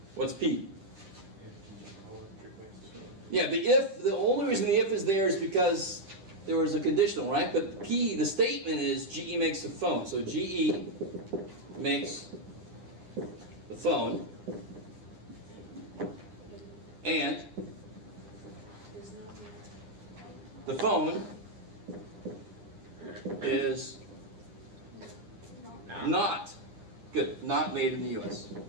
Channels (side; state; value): left; late; 10 ms